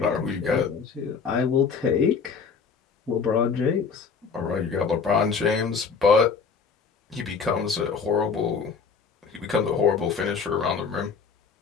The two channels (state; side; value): quieter; right; 5.6 dB